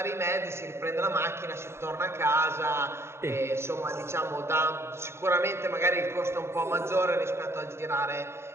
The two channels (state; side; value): late; left; 0.12 ms